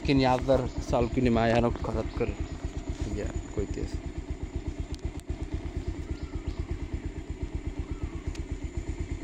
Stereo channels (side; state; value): both; identical; correlation 1.00